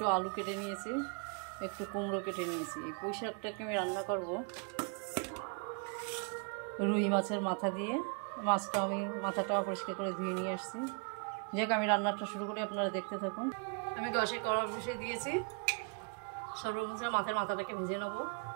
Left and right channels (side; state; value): left; quieter; 37.7 dB